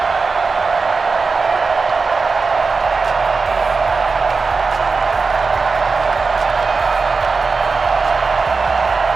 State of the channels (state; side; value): quieter; left; 4.4 dB